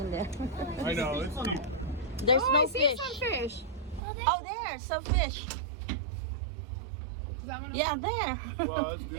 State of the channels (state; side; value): drops out; left; at 4.0 s